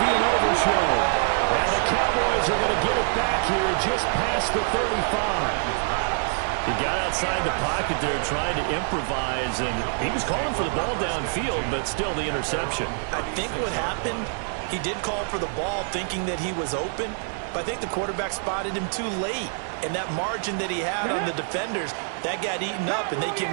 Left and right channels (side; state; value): left; silent; 61 dB below the other